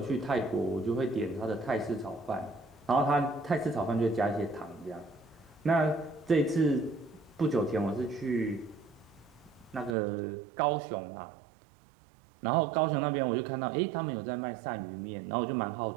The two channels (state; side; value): drops out; left; at 10.0 s